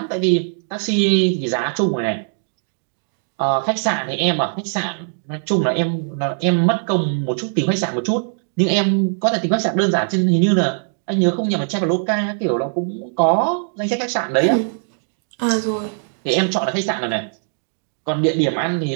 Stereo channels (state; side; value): silent; left; digital silence